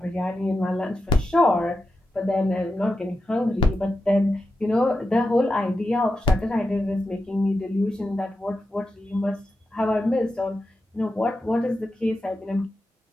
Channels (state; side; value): normal; both; correlation 0.89